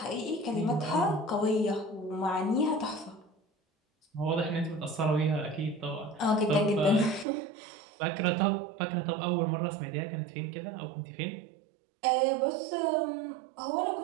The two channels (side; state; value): left; drops out; at 7.2 s